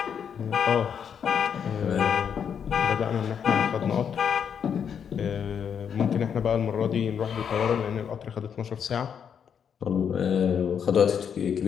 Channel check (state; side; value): quieter; right; 7.7 dB